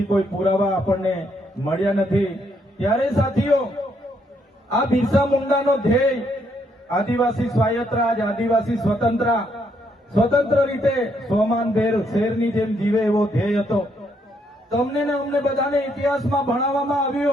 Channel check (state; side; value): normal; both; correlation 0.73